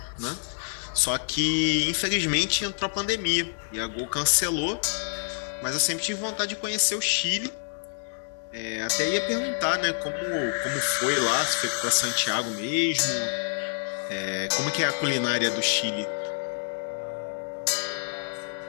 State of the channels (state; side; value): silent; right; digital silence